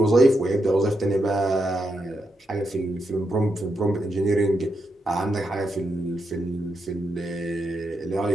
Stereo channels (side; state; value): both; normal; correlation 0.83